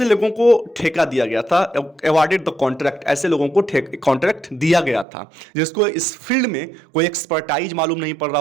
लोगों को ठेका दिया गया था, अवार्डेड द कॉन्ट्रैक्ट, ऐसे लोगों को कॉन्ट्रैक्ट दिया गया था जिसको इस फील्ड में कोई एक्सपर्टाइज मालूम नहीं पड़ रहा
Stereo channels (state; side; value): drops out; left; at 5.1 s